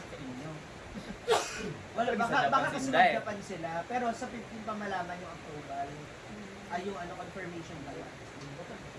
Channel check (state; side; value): identical; both; correlation 1.00